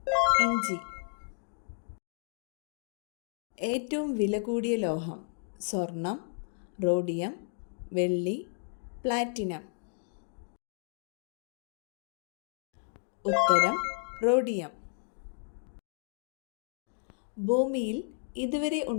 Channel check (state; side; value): silent; right; digital silence